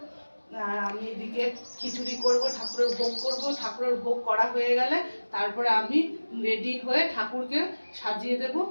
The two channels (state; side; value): inverted; both; correlation -1.00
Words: আর আমি এদিকে খিচুড়ি করব, ঠাকুরের ভোগ করব। ঠাকুরের ভোগ করা হয়ে গেলে তারপরে আমি রেডি হয়ে ঠাকুরকে সাজিয়ে দেব।